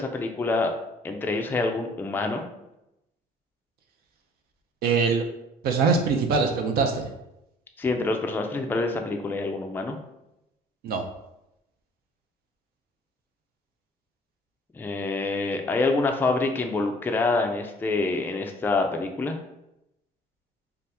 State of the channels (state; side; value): normal; both; correlation 0.54